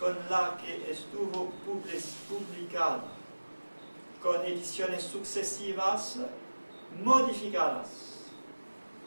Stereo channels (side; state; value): both; inverted; correlation -1.00